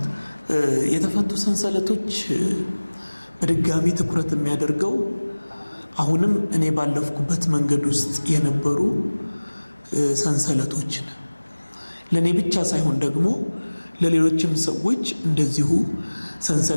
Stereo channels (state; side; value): inverted; both; correlation -1.00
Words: የተፈቱ ሰንሰለቶች በድጋሚ ትኩረት የሚያደርገው አሁንም እኔ ባለፍኩበት መንገድ ውስጥ የነበሩ ሰንሰለቶችን ለእኔ ብቻ ሳይሆን ደግሞ ለሌሎችም ሰዎች እንደዚሁ